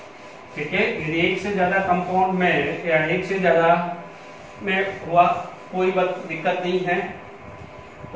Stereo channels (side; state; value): both; identical; correlation 1.00